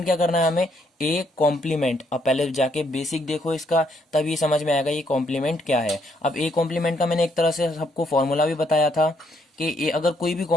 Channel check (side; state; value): both; normal; correlation 0.72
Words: क्या करना है हमें, ए कॉम्प्लीमेंट। अब पहले जाके बेसिक देखो इसका, तब ये समझ में आएगा ये कॉम्प्लीमेंट क्या है। अब ए कॉम्प्लीमेंट का मैंने एक तरह से सबको फॉर्मूला भी बताया था कि ए अगर कोई भी